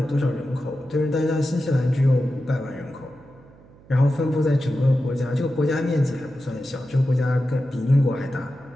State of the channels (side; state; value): right; noise; hum, 25 dB below the sound